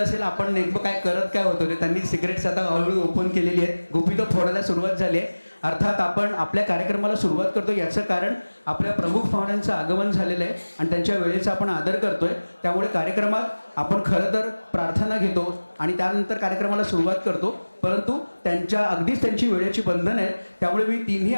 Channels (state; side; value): inverted; both; correlation -1.00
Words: असेल आपण नेमकं काय करत काय होतो ते. त्यांनी सिगरेट्स आता हळूहळू ओपन केलेली आहेत, गुपितं फोडायला सुरुवात झाली आहे. अर्थात आपण आपल्या कार्यक्रमाला सुरुवात करतो याचं कारण आपल्या प्रमुख पाहुण्यांचं आगमन झालेलं आहे आणि त्यांच्या वेळेचा आपण आदर करतोय. त्यामुळे कार्यक्रमात आपण खरं तर प्रार्थना घेतो आणि त्यानंतर कार्यक्रमाला सुरुवात करतो, परंतु अगदीच त्यांची वेळेची बंधन आहेत. त्यामुळे मी तिन्ही